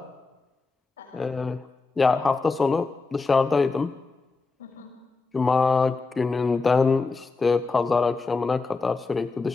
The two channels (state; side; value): quieter; right; 4.1 dB